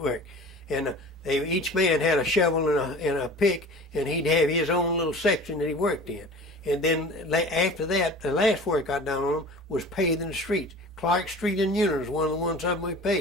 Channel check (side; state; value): both; normal; correlation 0.40